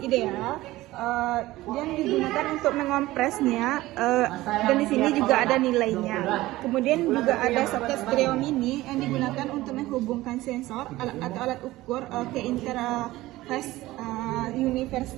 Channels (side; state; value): left; quieter; 17.5 dB